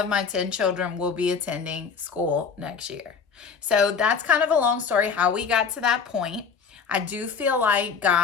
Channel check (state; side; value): quieter; right; 6.0 dB